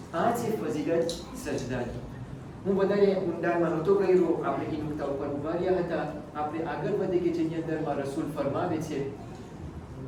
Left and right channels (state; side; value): identical; both; correlation 1.00